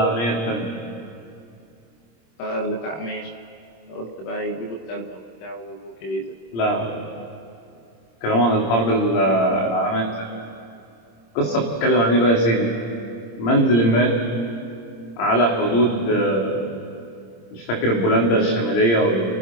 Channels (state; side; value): late; right; 26 ms